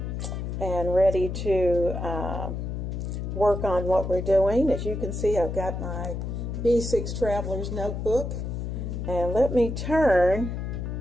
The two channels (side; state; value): left; noise; hum, 4 dB below the sound